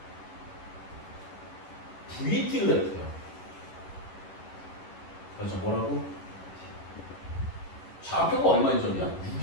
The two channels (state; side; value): late; right; 11 ms